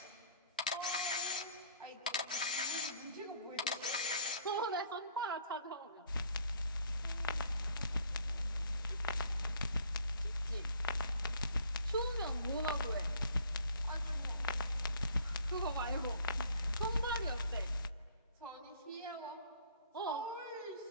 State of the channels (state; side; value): inverted; both; correlation -0.58